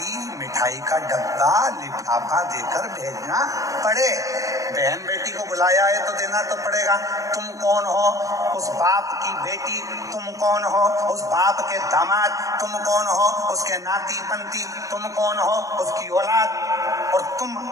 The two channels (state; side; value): late; left; 0.16 ms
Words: मिठाई का डब्बा, लिफाफा देकर भेजना पड़े। बहन बेटी को बुलाया है तो देना तो पड़ेगा। तुम कौन हो? उस बाप की बेटी। तुम कौन हो? उस बाप के दामाद। तुम कौन हो? उसके नाती पंती। तुम कौन हो? उसकी औलाद। और तुम